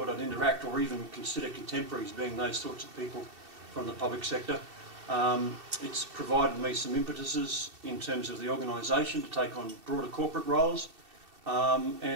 I'd interact or even consider contemporaries being those sorts of people from the public sector. It's provided me some impetuses in terms of the organisation to take on broader corporate roles,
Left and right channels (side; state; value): left; late; 2.7 ms